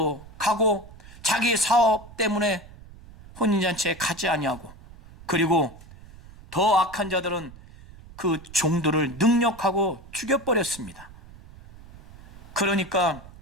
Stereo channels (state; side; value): noise; right; rumble, 20 dB below the sound